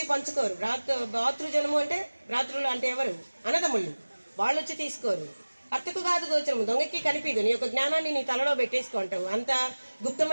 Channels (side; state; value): both; inverted; correlation -1.00